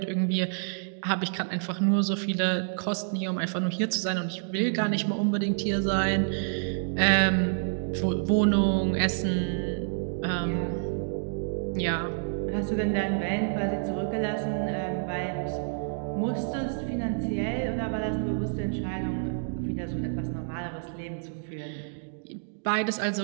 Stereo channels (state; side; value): silent; left; digital silence